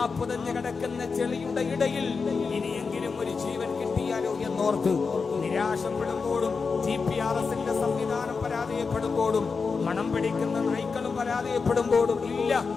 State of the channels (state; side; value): quieter; right; 4.9 dB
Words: പുതഞ്ഞു കിടക്കുന്ന ചെളിയുടെ ഇടയിൽ ഇനിയെങ്കിലും ഒരു ജീവൻ കിട്ടിയാലോ എന്നോർത്ത് നിരാശപ്പെടുമ്പോഴും GPRSന്റെ സംവിധാനം പരാജയപ്പെടുമ്പോഴും മണം പിടിക്കുന്ന നായ്ക്കളും പരാജയപ്പെടുമ്പോഴും ഇല്ല,